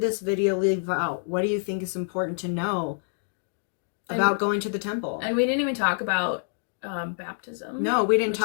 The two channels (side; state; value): right; silent; digital silence